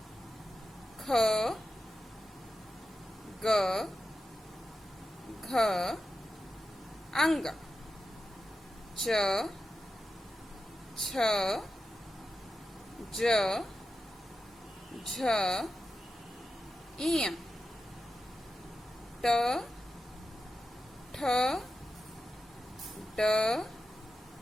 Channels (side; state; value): both; normal; correlation 0.91